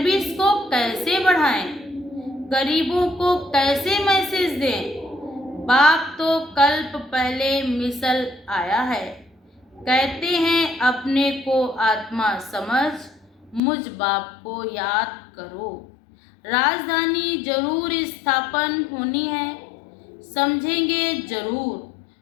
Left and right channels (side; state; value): right; drops out; at 13.6 s